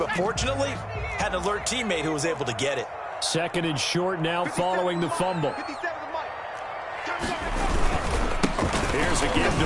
fortunately, had an alert teammate who was able to get it. Second and short now following the fumble. Here's a give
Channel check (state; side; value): identical; both; correlation 1.00